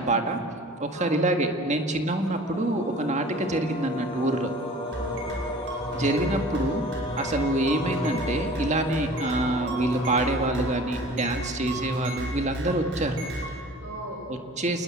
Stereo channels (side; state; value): both; normal; correlation 0.45